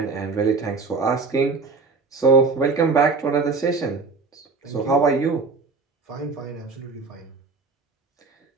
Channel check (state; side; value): quieter; left; 4.3 dB